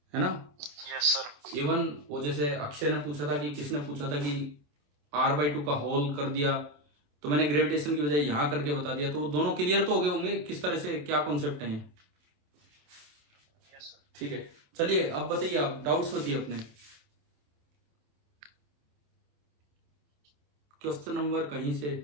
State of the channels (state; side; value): late; left; 27 ms